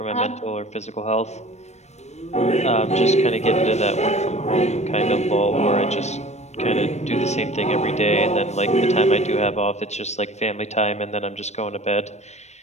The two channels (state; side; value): late; right; 0.32 ms